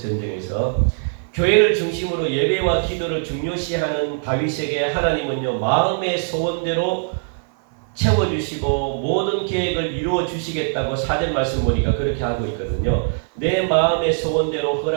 교회를 중심으로 예배와 기도를 중요시하는 다윗에게 하나님은요 마음의 소원대로 채워주시고 모든 계획을 이루어 주시겠다고 4절 말씀 보니까 그렇게 하고 있거든요. 내 마음의 소원대로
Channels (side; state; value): left; silent; 58 dB below the other